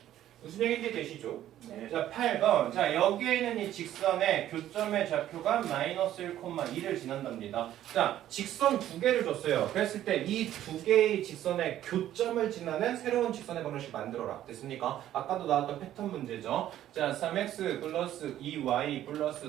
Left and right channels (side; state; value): left; quieter; 12.4 dB